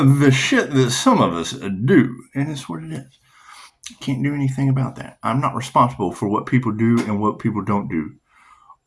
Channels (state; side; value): identical; both; correlation 1.00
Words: the shit that some of us do, and it's what it is. Can't do anything about that. I'm not responsible for what people do and what people don't do,